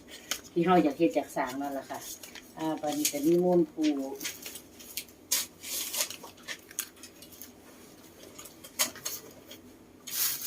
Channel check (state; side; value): identical; both; correlation 1.00